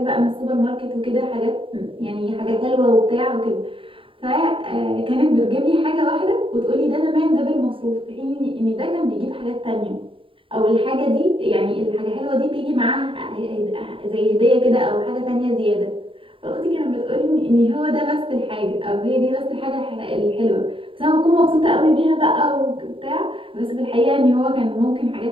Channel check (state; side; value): late; left; 0.25 ms